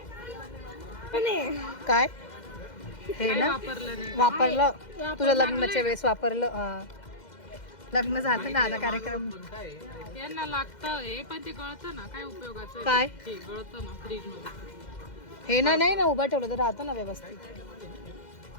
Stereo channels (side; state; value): right; late; 2.1 ms